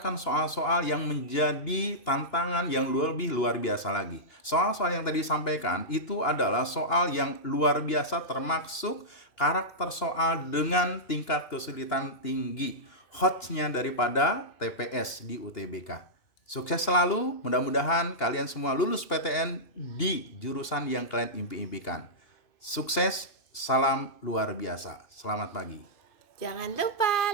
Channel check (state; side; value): late; right; 2.8 ms